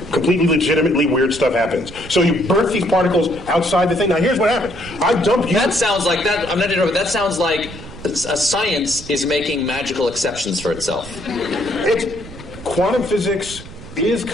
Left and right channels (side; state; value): right; noise; rumble, 15 dB below the sound